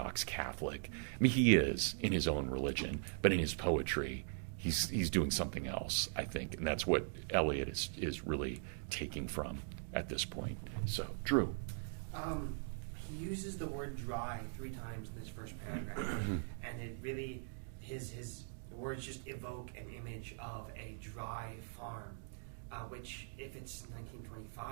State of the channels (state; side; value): silent; left; digital silence